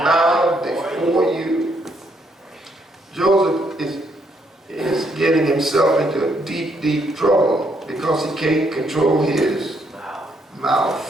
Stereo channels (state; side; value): normal; both; correlation 0.73